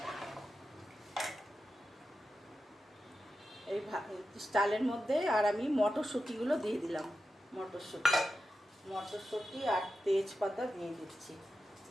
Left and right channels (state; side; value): normal; both; correlation 0.91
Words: এই চালের মধ্যে আর আমি মটরশুঁটিগুলো দিয়ে দিলাম। মটরশুঁটি আর তেজপাতা দিয়ে দিচ্ছি।